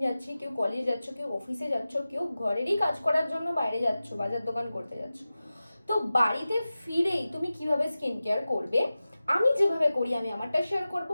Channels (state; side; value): inverted; both; correlation -0.95